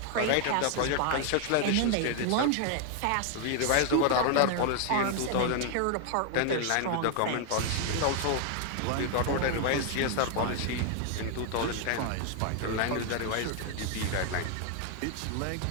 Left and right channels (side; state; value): both; different; correlation 0.00